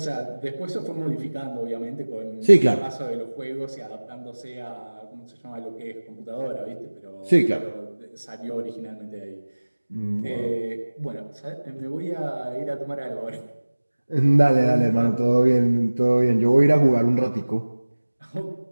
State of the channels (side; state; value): both; inverted; correlation -1.00